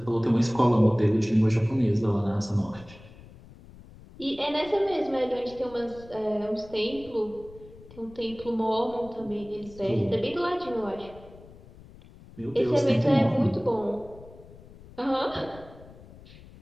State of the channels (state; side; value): noise; left; rumble, 20 dB below the sound